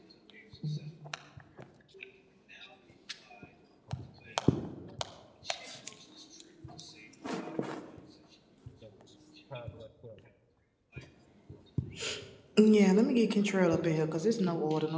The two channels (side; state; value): both; identical; correlation 1.00